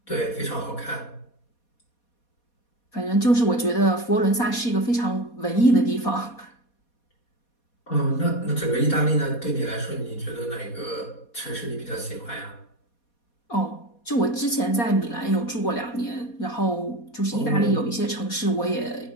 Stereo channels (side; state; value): right; late; 4.2 ms